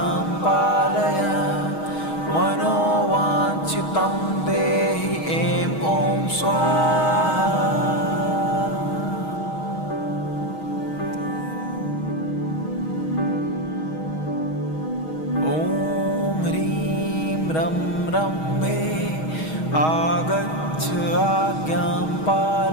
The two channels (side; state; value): right; late; 6.3 ms